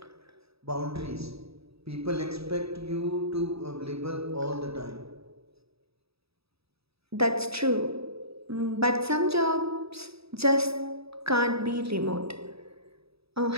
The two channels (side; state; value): left; late; 0.77 ms